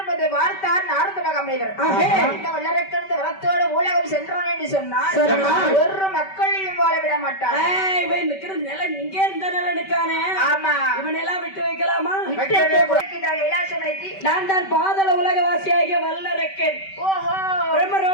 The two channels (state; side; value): late; right; 5.2 ms